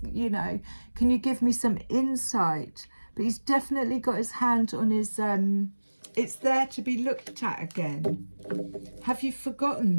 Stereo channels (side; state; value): both; inverted; correlation -1.00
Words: you know, can you give me some insight? But he's definitely got his hand on his it's there to be looked at again. Have you forgotten